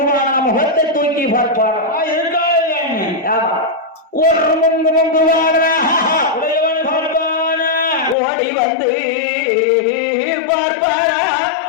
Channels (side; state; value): right; drops out; at 8.2 s